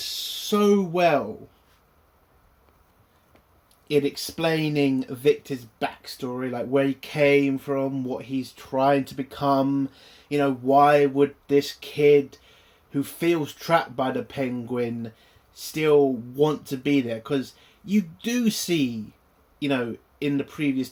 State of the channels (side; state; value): both; identical; correlation 1.00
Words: well in explaining Victor's backstory, like where he came from, what he's trying to become. Why would this kid who feels trapped by the penguin still want to be there? Because you do see, in the previous